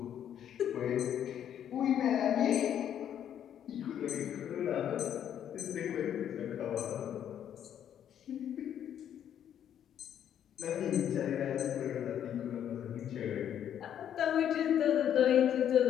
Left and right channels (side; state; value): right; quieter; 9.8 dB